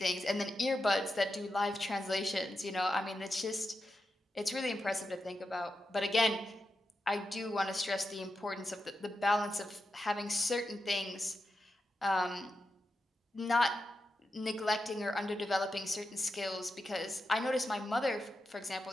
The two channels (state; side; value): normal; both; correlation 0.89